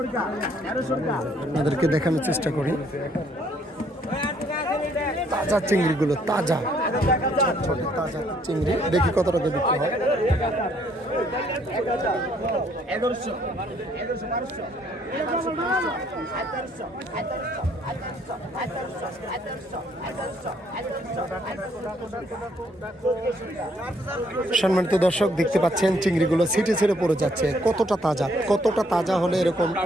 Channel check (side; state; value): both; normal; correlation 0.67